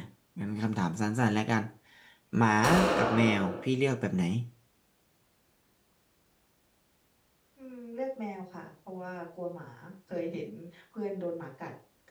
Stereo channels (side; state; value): both; identical; correlation 1.00